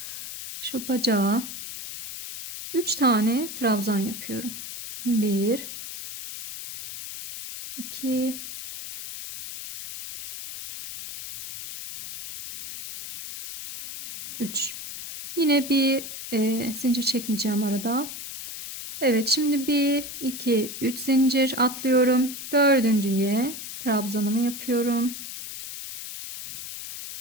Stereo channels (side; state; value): left; noise; hiss, 9 dB below the sound